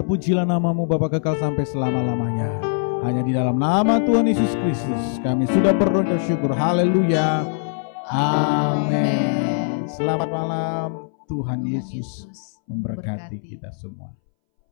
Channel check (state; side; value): silent; right; 64 dB below the other